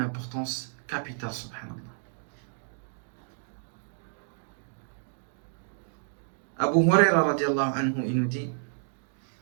capitale, subhanallah. Abu Huraira radiallahu anhu, il nous dit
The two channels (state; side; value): silent; left; digital silence